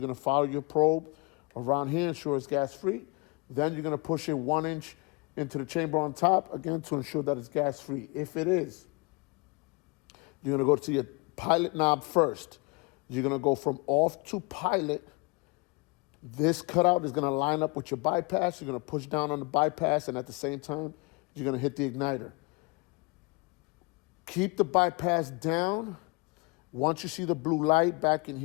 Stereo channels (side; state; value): right; quieter; 28.5 dB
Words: gonna follow your probe around here, ensure it's gas free. Then you're gonna push it 1 inch into the chamber on top, again, to ensure that it's gas free. If it is, you're gonna go to your pilot knob first. You're gonna go from off to pilot. This cutout is gonna line up with your bypass. You're gonna push down on the bypass, and at the same time, you're gonna hit the igniter. Keep the bypass down. Once you see the blue light back in